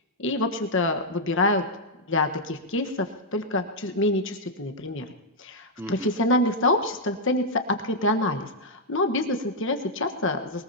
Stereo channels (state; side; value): normal; both; correlation -0.03